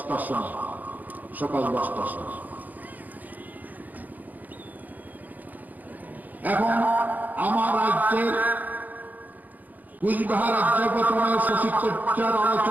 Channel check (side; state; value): left; late; 0.082 ms